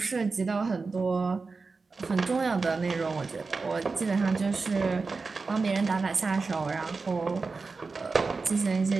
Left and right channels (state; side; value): quieter; left; 4.2 dB